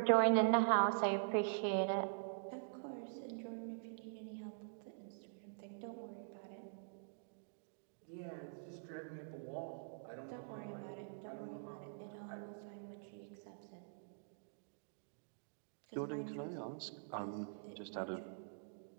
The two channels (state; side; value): silent; left; digital silence